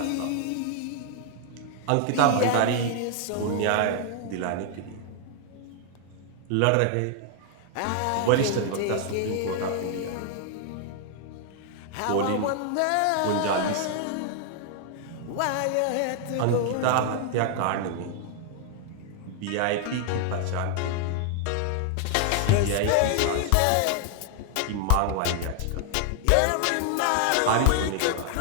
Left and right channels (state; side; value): different; both; correlation 0.00